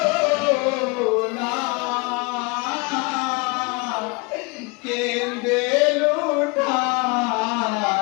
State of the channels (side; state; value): right; quieter; 28.5 dB